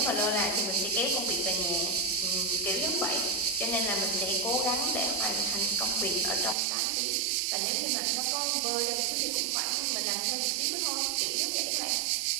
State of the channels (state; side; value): drops out; left; at 6.6 s